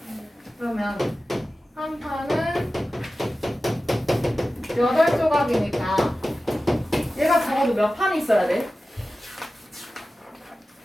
그러면 한 판은 8조각이니까 얘가 적어도 몇 판이 있어야 돼?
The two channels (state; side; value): normal; both; correlation 0.95